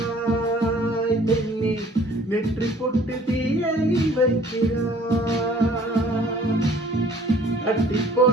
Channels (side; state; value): both; normal; correlation 0.54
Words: நெற்றி பொட்டு தீயை வைக்கிறாய், அட்டி